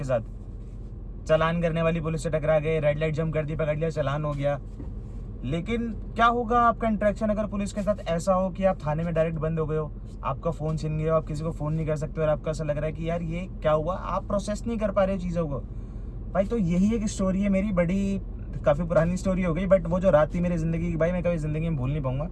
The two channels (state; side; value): identical; both; correlation 1.00